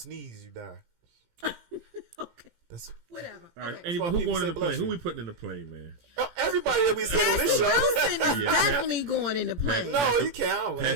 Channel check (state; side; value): late; left; 17 ms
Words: you die. Okay. That's whatever. All right. Okay. Anyway, who going in the plane? Who we putting in the plane, man? Everybody that we said on this show. Wilson is definitely going in the plane. No, you can't.